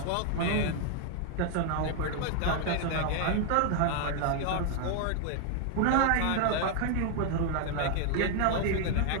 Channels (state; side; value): different; both; correlation 0.00